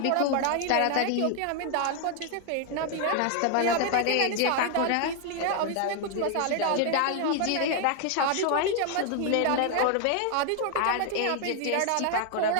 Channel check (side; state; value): both; different; correlation 0.00